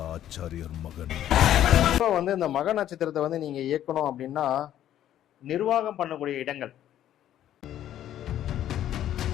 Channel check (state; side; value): quieter; right; 11.6 dB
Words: ஆச்சாரியர் மகன். இப்போ வந்து இந்த மக நட்சத்திரத்தை வந்து நீங்க இயக்கணும் அப்படின்னா நிர்வாகம் பண்ணக்கூடிய இடங்கள்